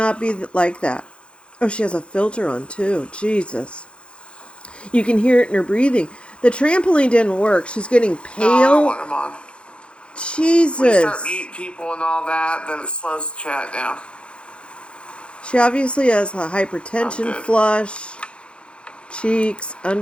be like that. Oh, she has a filter on too. Jesus. You can hear it in her breathing. The trampoline didn't work. She's getting pale. No, I don't want him on. Jesus. When you start meeting people and all that, then it slows the chat down. She obviously has a hypertension flush. Cheeks,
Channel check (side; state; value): right; late; 0.058 ms